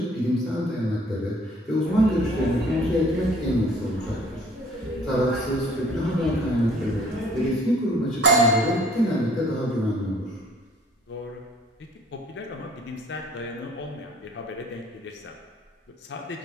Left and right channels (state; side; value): normal; both; correlation 0.56